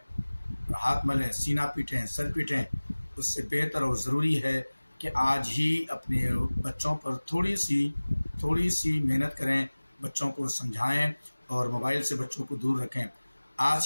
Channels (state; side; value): inverted; both; correlation -1.00